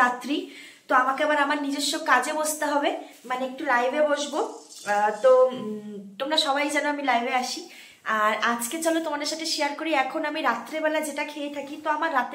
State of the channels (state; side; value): identical; both; correlation 1.00